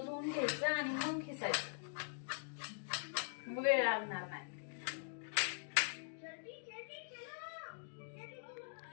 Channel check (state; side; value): silent; right; digital silence